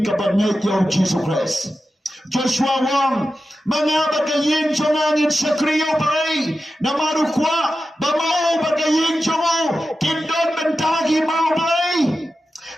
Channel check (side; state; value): both; normal; correlation 0.92